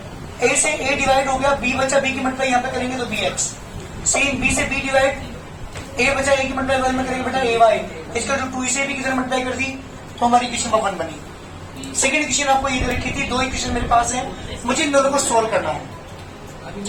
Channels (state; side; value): identical; both; correlation 1.00